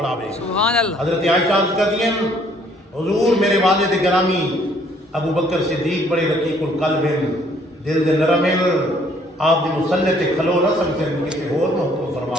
سبحان اللہ حضرت عائشہ عرض کرتی ہیں حضور میرے والد گرامی ابو بکر صدیق بڑے رقیق القلب دل دے نرم آپ دی مصلی تے کھلو نہ سکتے کسی اور نو حکم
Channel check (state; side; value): normal; both; correlation 0.63